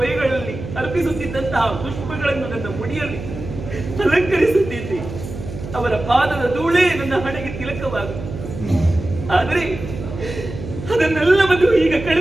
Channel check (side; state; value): right; noise; hum, 10 dB below the sound